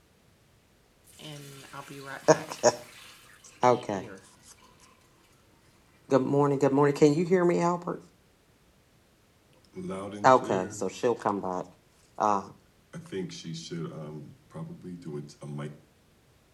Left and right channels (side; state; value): both; identical; correlation 1.00